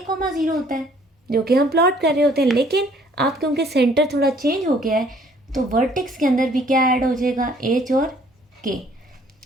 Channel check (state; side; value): normal; both; correlation 0.59